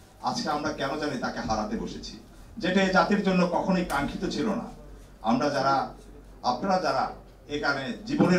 আজকে আমরা কেন জানি তাকে হারাতে বসেছি, যেটা এই জাতির জন্য কখনোই কাঙ্ক্ষিত ছিল না। আপনারা যারা এখানে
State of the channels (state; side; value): identical; both; correlation 1.00